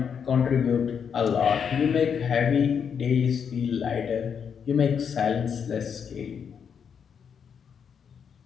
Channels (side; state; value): right; quieter; 7.2 dB